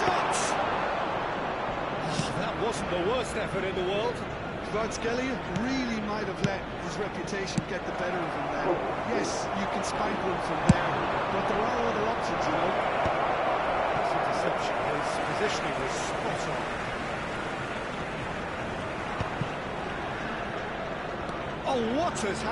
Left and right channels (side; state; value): both; identical; correlation 1.00